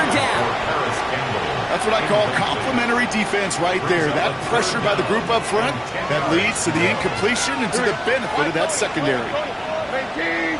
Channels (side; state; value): both; identical; correlation 1.00